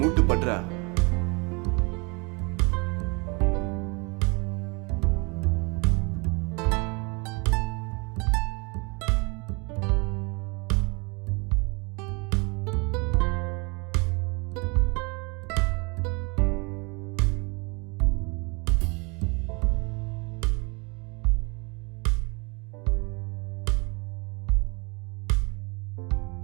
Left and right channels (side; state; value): left; quieter; 30.0 dB